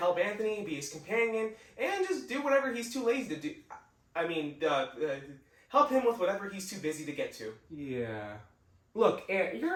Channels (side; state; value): both; identical; correlation 1.00